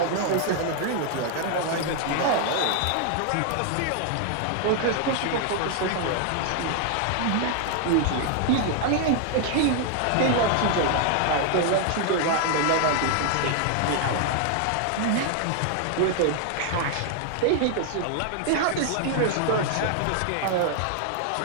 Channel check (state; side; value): different; both; correlation 0.00